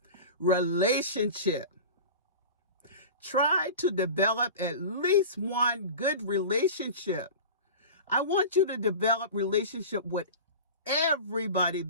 relationship. Try to develop at least one good relationship. I want you to develop relationship with everybody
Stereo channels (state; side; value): inverted; both; correlation -0.33